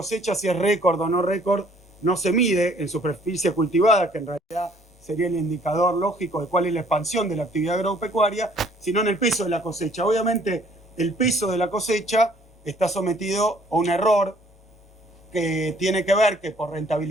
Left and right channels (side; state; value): both; normal; correlation 0.59